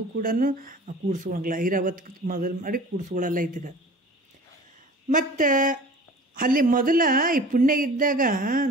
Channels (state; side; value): normal; both; correlation 0.43